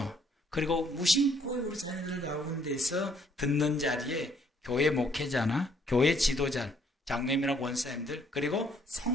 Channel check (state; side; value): normal; both; correlation 0.66